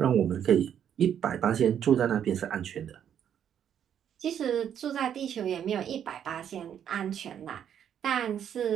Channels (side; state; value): left; quieter; 9.2 dB